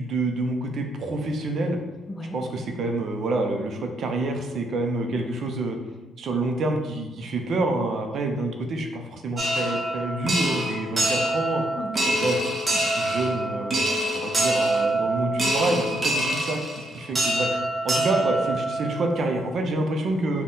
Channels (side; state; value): both; normal; correlation 0.76